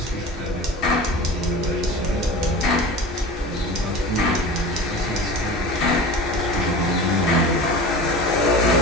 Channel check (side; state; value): both; normal; correlation 0.34